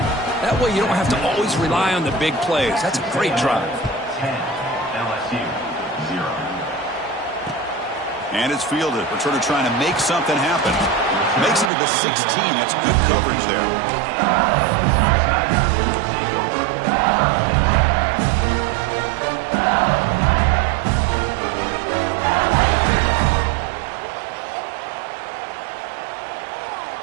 That way you don't have to always rely on the big plays. That's a great drive. 10, LSU, 0. And it's fielded. Returner trying to make something happen. Makes it to the 16. That's good coverage there.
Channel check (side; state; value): left; drops out; at 11.7 s